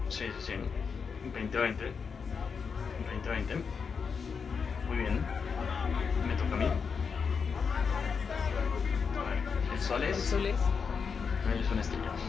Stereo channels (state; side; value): quieter; right; 5.8 dB